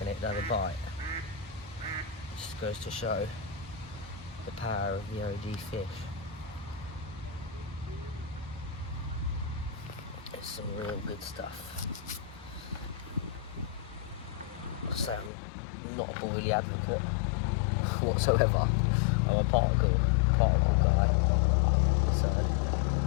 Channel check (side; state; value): right; drops out; at 15.3 s